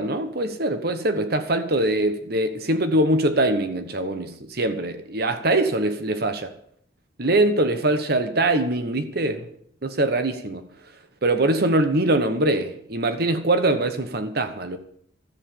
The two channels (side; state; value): both; normal; correlation 0.12